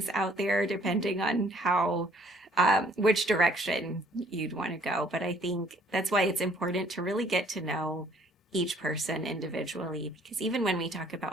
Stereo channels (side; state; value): both; normal; correlation 0.61